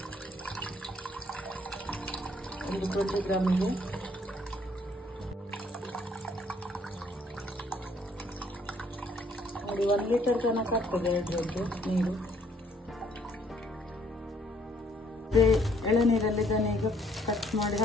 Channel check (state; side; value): normal; both; correlation 0.65